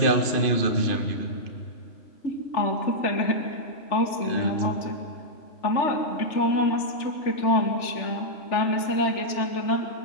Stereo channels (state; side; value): late; right; 3.4 ms